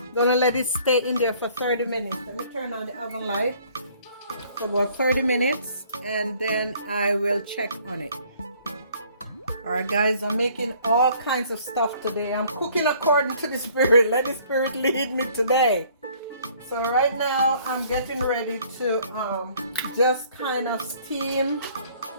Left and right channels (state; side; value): inverted; both; correlation -0.58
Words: gonna let it stay in there for 30 minutes. Let me turn on the oven light for about 30 minutes and then I will check on it. Alright guys, I'm making all kinds of stuff today. I'm cooking according to the Spirit. Let the Spirit lead me today. So right now I'm getting ready to just kind of steam,